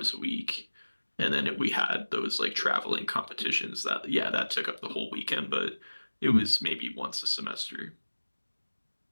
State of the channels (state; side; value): inverted; both; correlation -1.00